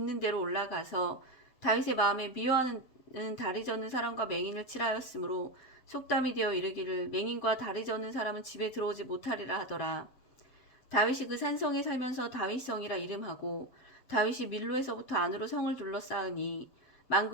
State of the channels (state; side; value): late; right; 7.7 ms